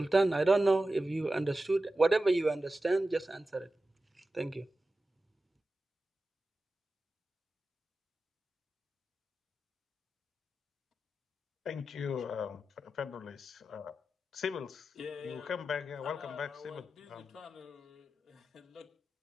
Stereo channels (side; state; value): both; normal; correlation 0.93